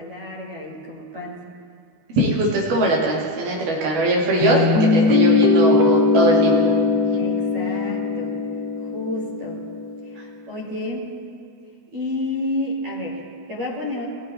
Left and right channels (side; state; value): left; late; 12 ms